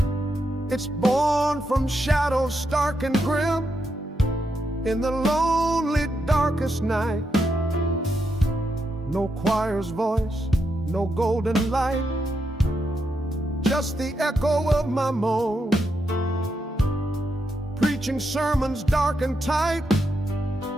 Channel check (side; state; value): both; normal; correlation 0.83